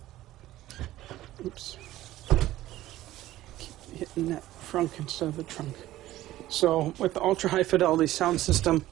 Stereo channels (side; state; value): left; quieter; 15.1 dB